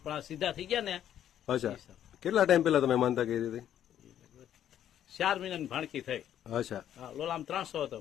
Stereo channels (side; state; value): right; quieter; 10.6 dB